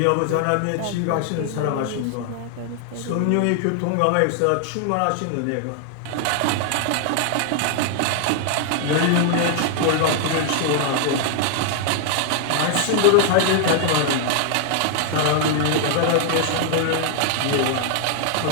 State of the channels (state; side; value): different; both; correlation 0.00